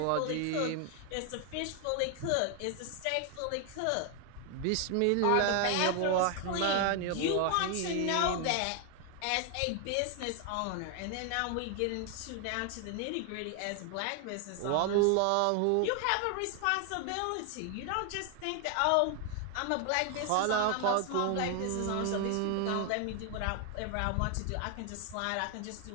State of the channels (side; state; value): both; different; correlation 0.00